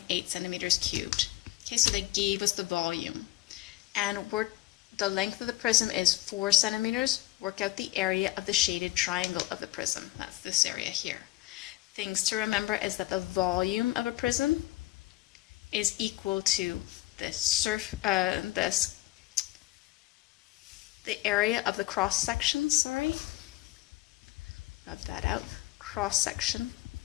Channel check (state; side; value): quieter; right; 17.7 dB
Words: centimeters cubed. Okay, so they gave us the volume. And the length of the prism is 4 centimeters. Work out the area of the shaded triangle of the prism. That's this area here. Things to remember is that the volume of a prism is equal to the area of the cross section, rub that out, cross section